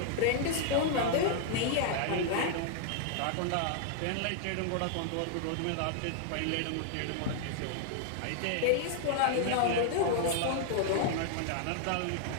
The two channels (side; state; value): both; different; correlation 0.00